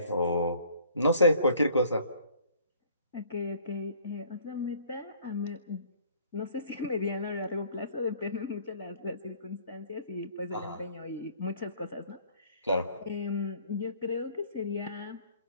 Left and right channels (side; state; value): both; inverted; correlation -0.56